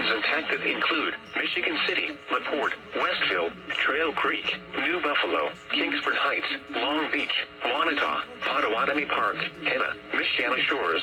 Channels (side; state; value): both; identical; correlation 1.00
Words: impacted include Michigan City, LaPorte, Westville, Trail Creek, New Buffalo, Kingsford Heights, Long Beach, Wanata, Potawatomi Park, Henna, Michiana